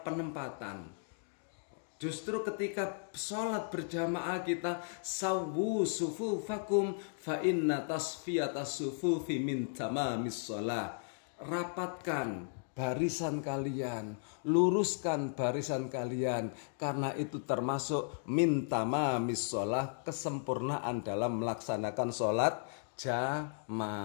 penempatan. Justru ketika sholat berjamaah kita sawu sufufakum fa inna tasfiyatas sufufi min tamamis shalah. Rapatkan barisan kalian, luruskan barisan kalian, karena itu termasuk min tamamis shalah, kesempurnaan dalam melaksanakan sholat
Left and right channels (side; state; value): right; silent; digital silence